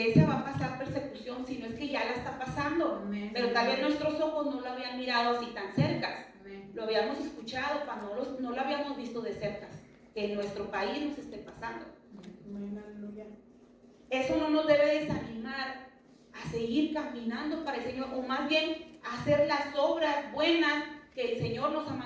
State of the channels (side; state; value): both; identical; correlation 1.00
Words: va a pasar persecución, si no es que ya la está pasando. Amén. Pero tal vez nuestros ojos no lo habían mirado así tan cerca. Amén. Lo habíamos escuchado, pero no lo habíamos visto de cerca. Que en nuestro país nos esté pasando. Amén. Aleluya. eso no nos debe desanimar a seguir caminando para el Señor, o más bien a hacer las obras buenas que el Señor nos ha